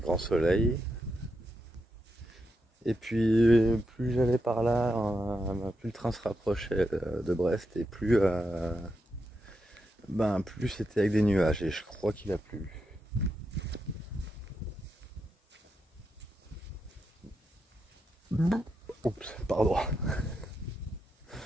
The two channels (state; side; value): normal; both; correlation 0.84